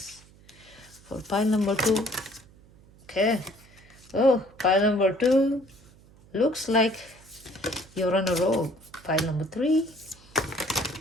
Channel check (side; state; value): right; noise; hum, 25 dB below the sound